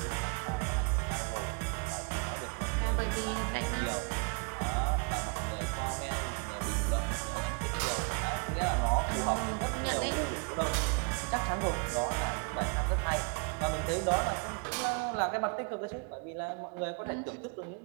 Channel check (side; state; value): left; quieter; 33.4 dB